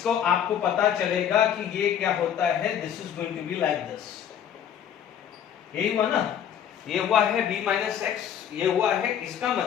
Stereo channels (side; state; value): right; quieter; 9.2 dB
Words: आपको पता चलेगा कि ये क्या होता है, this is going to be like this. यही हुआ ना, ये हुआ है b माइनस एक्स, ये हुआ है, इसका